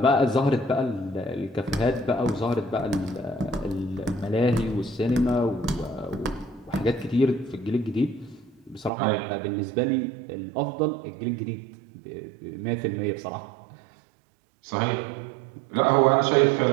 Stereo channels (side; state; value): left; drops out; at 8.9 s